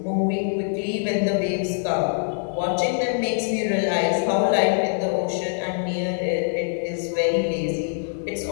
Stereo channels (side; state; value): right; silent; digital silence